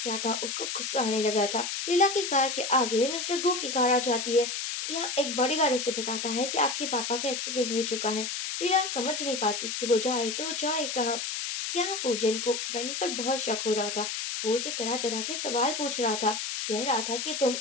क्या था, उसको गुस्सा आने लगा था। लीला की कार के आगे मिस्टर गो की कार आ जाती है। यहाँ एक बॉडीगार्ड उसे बताता है कि आपके पापा का एक्सीडेंट हो चुका है। लीला समझ नहीं पाती कि वो जाए तो जाए कहाँ। यहाँ फूजन को वैनी पर बहुत शक हो रहा था। वो उसे तरह तरह के सवाल पूछ रहा था। कह रहा था कि तुम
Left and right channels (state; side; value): noise; left; hiss, 3 dB below the sound